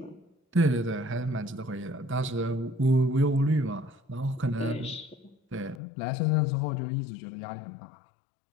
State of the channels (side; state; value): right; drops out; at 5.8 s